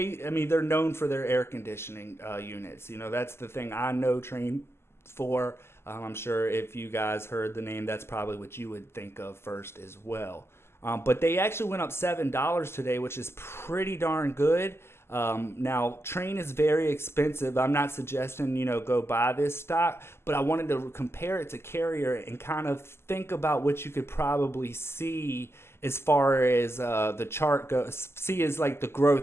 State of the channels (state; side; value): late; right; 0.12 ms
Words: mean, they're known for their air conditioning units. You know, that's the thing I know Train for. I'm sure if you guys heard the name, that's probably what you would think of first as well. But they actually went up $7 today, which is pretty darn good. Now, Train is very expensive. I'm not suggesting, go buy this stock, but I wanted to compare it to Carrier and kind of think about what you could probably see as far as the chart goes. See as like the